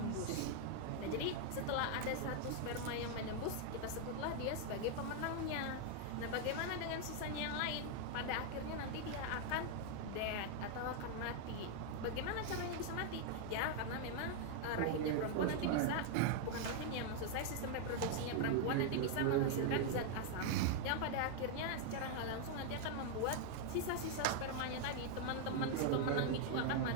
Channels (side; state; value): both; different; correlation 0.00